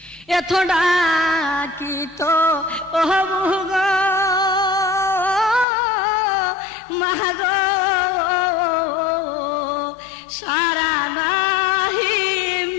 এত ডাকি তো হবু গো মাগো সারা নাহি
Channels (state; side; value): drops out; right; at 5.7 s